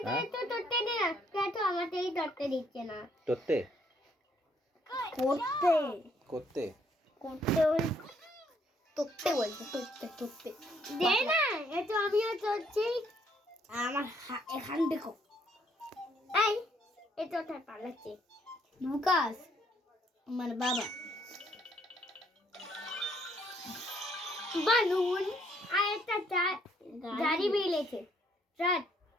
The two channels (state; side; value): normal; both; correlation 0.68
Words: তো ধরতে দে না, কেন আমাদেরই ধরতে দিচ্ছে না? করতে করতে করতে করতে বলছে করতে দে না, এটা আমিও ধরছি। আমার এখান দেখো, এই এটা ওঠার পালাচ্ছে লুকাস আমার বাবা। বালুন আর একটা গাড়ি বেরিয়েছে। ট্রাক